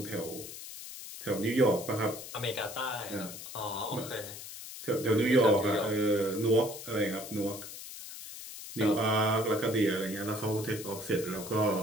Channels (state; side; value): noise; left; hiss, 11 dB below the sound